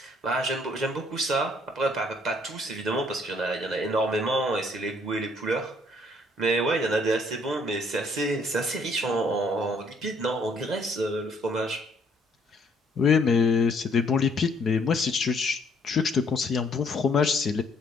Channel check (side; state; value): both; normal; correlation 0.65